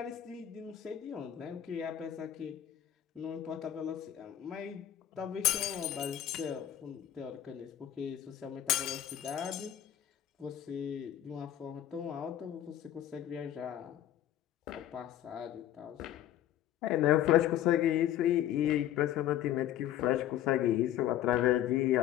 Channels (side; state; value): right; quieter; 11.6 dB